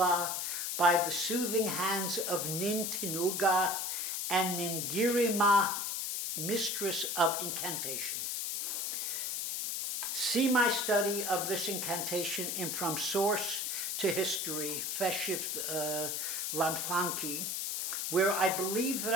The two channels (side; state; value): left; noise; hiss, 1 dB below the sound